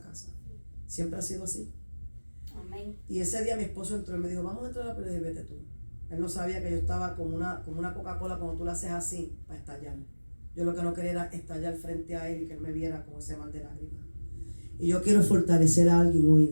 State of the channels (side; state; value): both; inverted; correlation -1.00